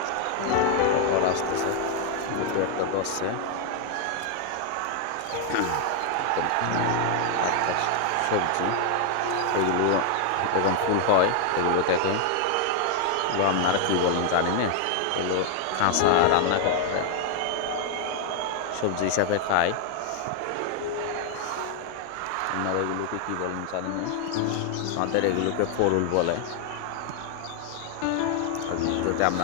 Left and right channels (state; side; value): different; both; correlation 0.00